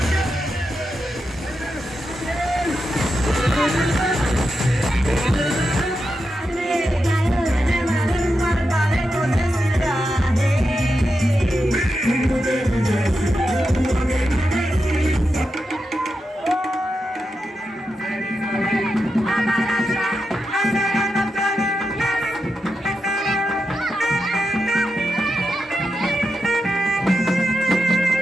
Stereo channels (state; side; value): normal; both; correlation 0.87